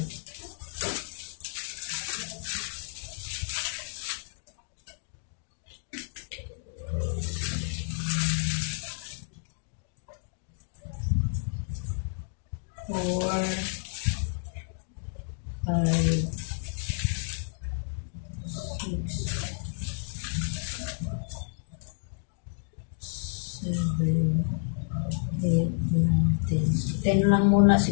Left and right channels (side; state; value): right; silent; digital silence